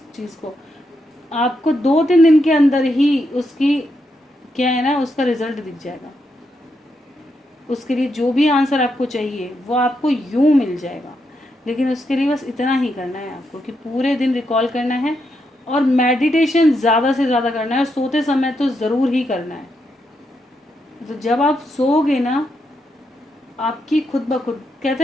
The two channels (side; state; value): both; normal; correlation 0.82